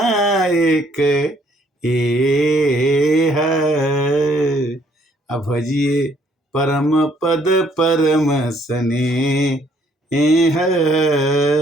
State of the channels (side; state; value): both; normal; correlation 0.65